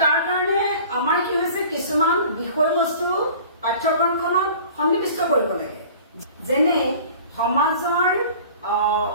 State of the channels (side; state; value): both; inverted; correlation -0.45